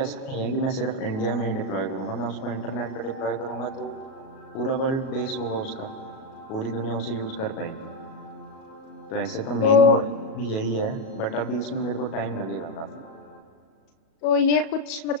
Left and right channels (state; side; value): late; right; 37 ms